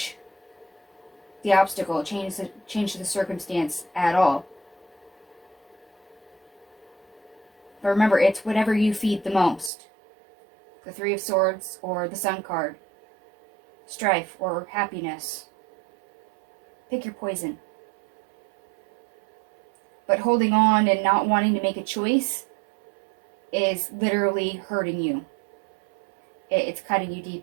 the obstacle, change the circumstance at all. But remember, it's whatever you feed the most. The Three of Swords or the Sun card. Strife or happiness. Pick your poison. But holding on and not wanting to make a choice is literally hurting you. It's cutting you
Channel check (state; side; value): drops out; left; at 9.7 s